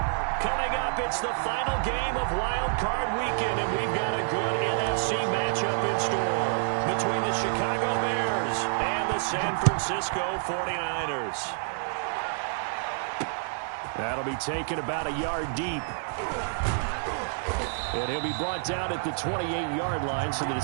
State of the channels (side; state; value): left; silent; 59 dB below the other